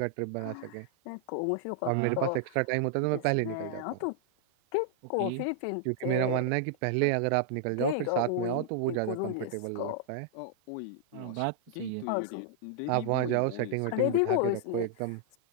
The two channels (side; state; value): both; different; correlation -0.01